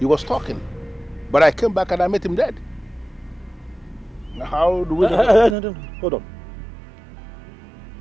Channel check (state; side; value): drops out; left; at 5.6 s